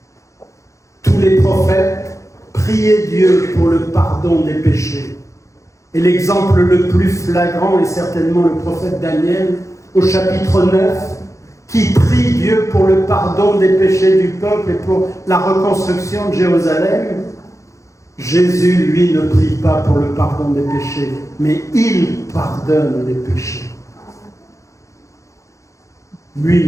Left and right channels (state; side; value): late; right; 0.15 ms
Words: Tous les prophètes priaient Dieu pour le pardon des péchés. Et l'exemple le plus flagrant est certainement le prophète Daniel, au chapitre 9, qui prie Dieu pour le pardon des péchés du peuple et pour la reconstruction de Jérusalem, Jésus, lui, ne prie pas pour le pardon des péchés, mais il pardonne les péchés.